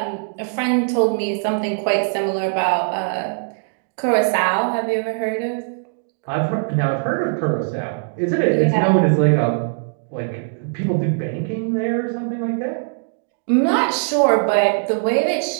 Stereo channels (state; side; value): silent; left; digital silence